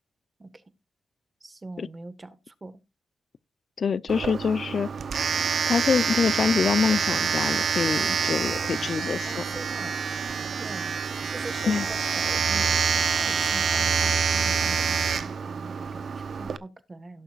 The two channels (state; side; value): normal; both; correlation 0.81